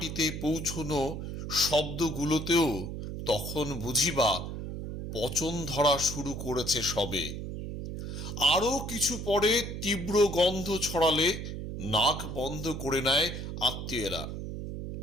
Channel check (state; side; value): noise; right; hum, 6 dB below the sound